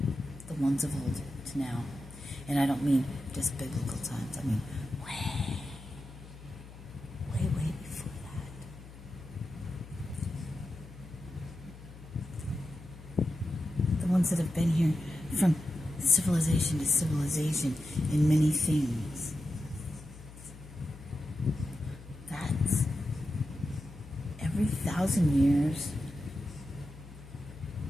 the ones of old to now. And I don't mean just biblical times. I mean way before that. The ones that have been here from civilization to civilization in many things. That's every 1,000 years.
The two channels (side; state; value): left; noise; hum, 16 dB below the sound